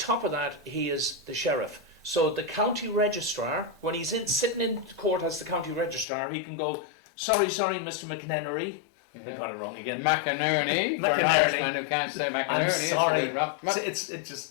of that, he is the sheriff. So the county registrar, when he's sitting in court as the county registrar, he can go, sorry, Mr. McNennery. I got it wrong again. McInerney. For an Irishman who can't say McInerney. I'm sorry. It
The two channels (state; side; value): drops out; right; at 6.1 s